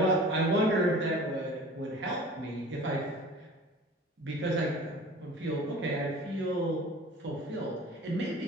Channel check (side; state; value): both; normal; correlation 0.42